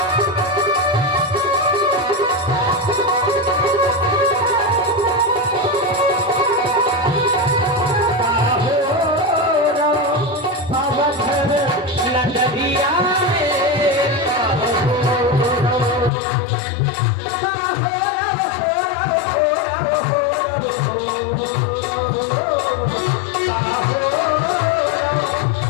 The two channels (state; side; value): drops out; right; at 16.1 s